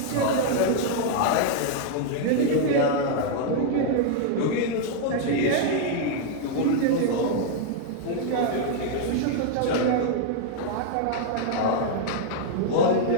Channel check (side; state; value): both; different; correlation 0.00